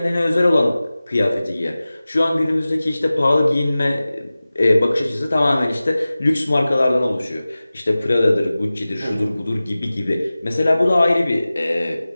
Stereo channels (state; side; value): inverted; both; correlation -0.97